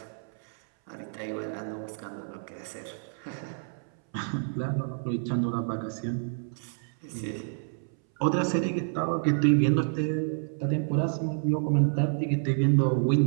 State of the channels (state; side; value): silent; left; 59 dB below the other